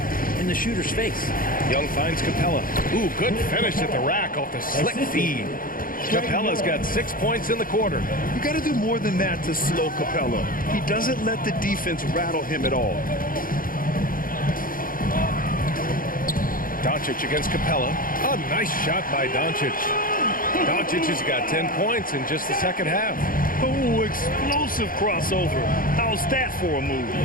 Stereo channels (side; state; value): right; late; 0.41 ms